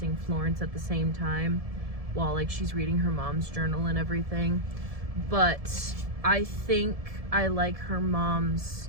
Florence at the same time while like she's reading her mom's journal and everything. But I think I like her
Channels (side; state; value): left; late; 1.7 ms